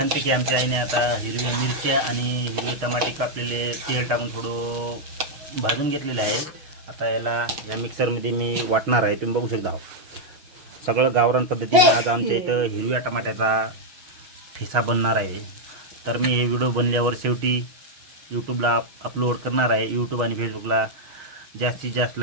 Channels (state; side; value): late; left; 6.4 ms